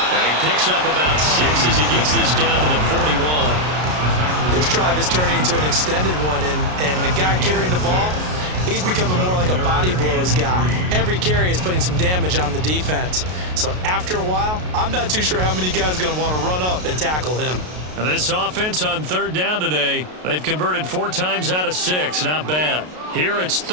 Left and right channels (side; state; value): left; late; 33 ms